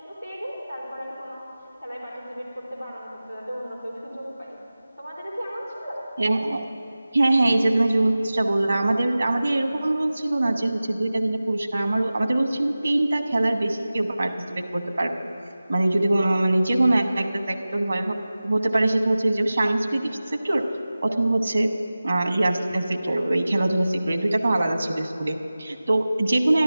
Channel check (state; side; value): inverted; both; correlation -0.96